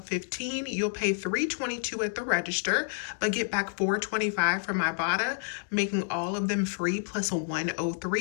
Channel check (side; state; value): right; silent; digital silence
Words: 15, you'll pay $3.22 at the register, but get back $4.25 from Ibotta, making all of them free plus a $1.03